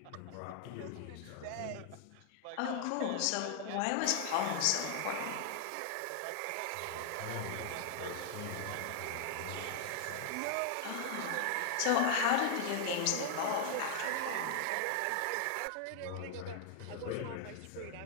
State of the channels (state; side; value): different; both; correlation 0.00